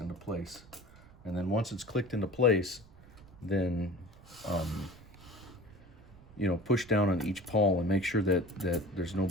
place. And then once it's clicked into place, then you know, push down on each pawl and make sure that there's no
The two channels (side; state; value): right; noise; rumble, 23 dB below the sound